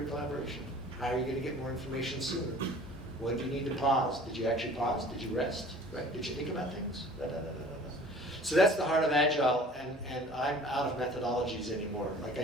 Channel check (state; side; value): normal; both; correlation 0.47